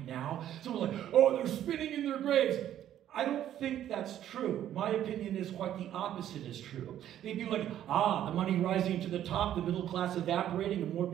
now, someone's like, oh, they're spinning in their graves. I don't think that's true. My opinion is quite the opposite is true. They'd be like, the money rising to the top, the middle class evaporating, and more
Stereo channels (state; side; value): quieter; left; 11.4 dB